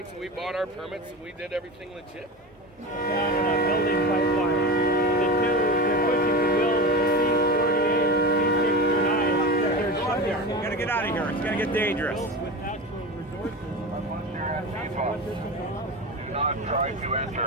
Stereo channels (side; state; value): both; normal; correlation 0.26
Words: and we bought our permits, and we did everything legit. Building pipeline. The two, they're pushing to build C-48, C-69. You gotta get out of here. It's gonna get dangerous. With natural resources. Do not try to